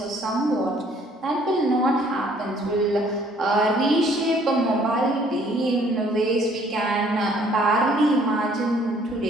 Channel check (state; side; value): normal; both; correlation 0.60